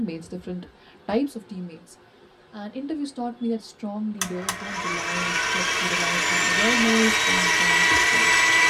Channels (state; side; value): identical; both; correlation 1.00